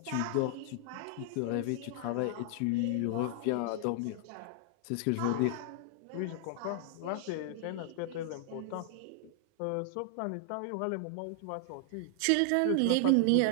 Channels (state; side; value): different; both; correlation 0.00